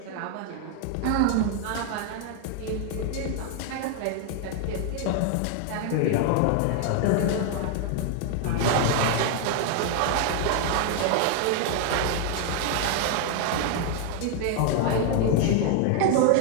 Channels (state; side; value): different; both; correlation 0.00